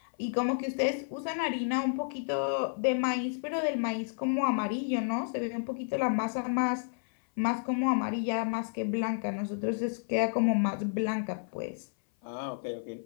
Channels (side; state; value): right; silent; 57 dB below the other